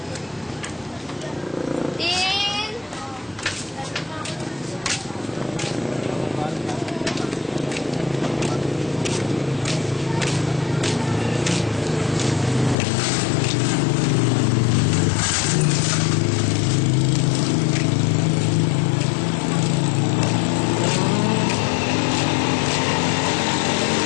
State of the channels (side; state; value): right; drops out; at 12.8 s